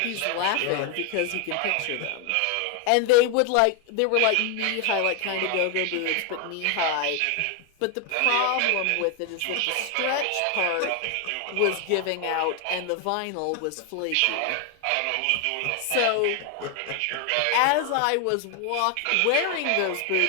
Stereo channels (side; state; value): both; different; correlation 0.01